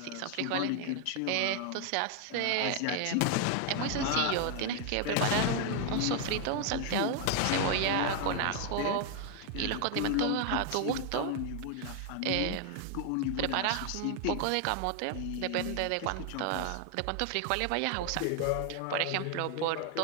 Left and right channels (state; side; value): different; both; correlation 0.00